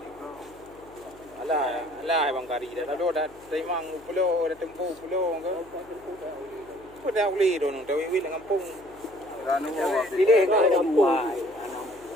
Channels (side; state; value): left; noise; hum, 25 dB below the sound